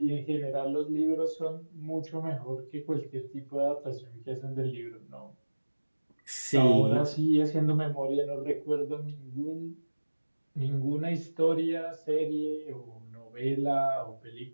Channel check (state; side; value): inverted; both; correlation -1.00